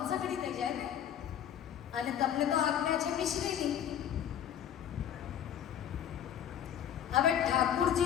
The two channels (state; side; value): quieter; right; 9.7 dB